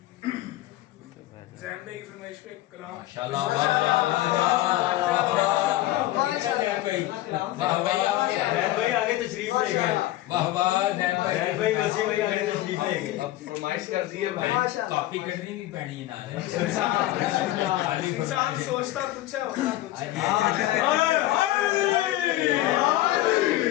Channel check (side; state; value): right; quieter; 15.8 dB